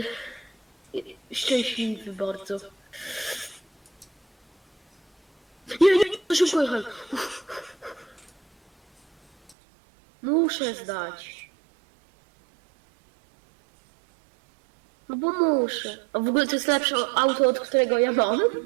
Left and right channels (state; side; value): drops out; left; at 9.6 s